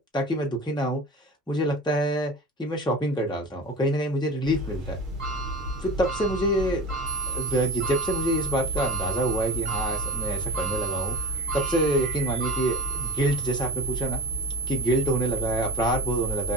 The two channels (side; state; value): both; normal; correlation 0.31